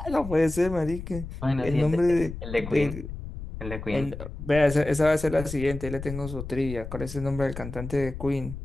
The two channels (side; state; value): left; noise; rumble, 9 dB below the sound